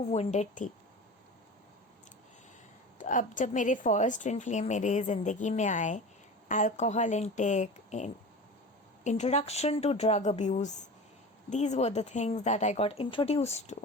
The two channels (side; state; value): both; normal; correlation 0.33